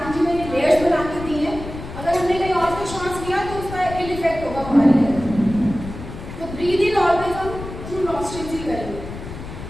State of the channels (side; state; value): left; noise; rumble, 11 dB below the sound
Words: जी ने लेयर्स बना के दी है. अगर हमने कहीं और से श्वास लिया तो उसका इल इफेक्ट होगा हमारे लिए. तो ब्रीद इन ऑलवेज हम थ्रू नॉस्ट्रिल्स ही करेंगे.